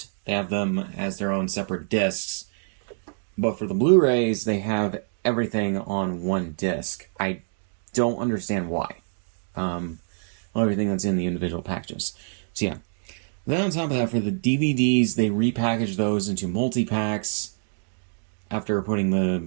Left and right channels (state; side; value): silent; left; digital silence